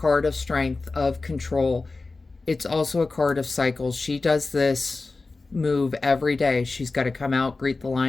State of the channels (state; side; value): quieter; right; 3.7 dB